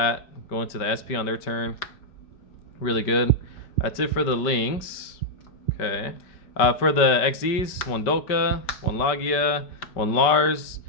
go into the SP on their turn. Really good. That's it for the links. Okay. For the XZs, one Dolka, one Logia, one Lars.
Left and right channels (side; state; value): right; late; 5.2 ms